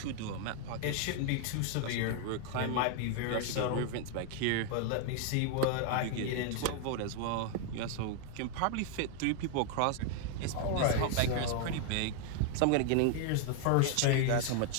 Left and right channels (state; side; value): different; both; correlation 0.01